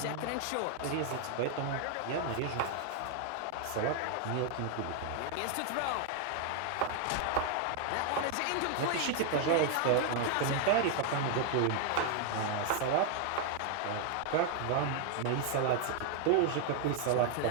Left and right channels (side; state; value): both; different; correlation 0.00